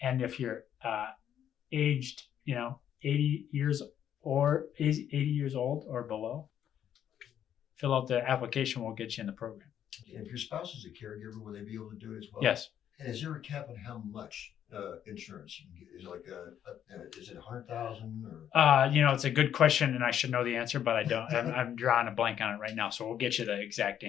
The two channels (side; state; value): right; quieter; 9.8 dB